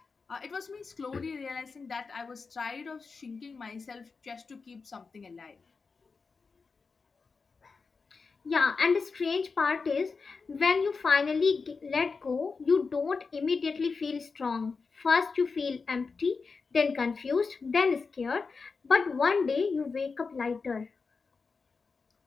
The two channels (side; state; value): right; quieter; 4.7 dB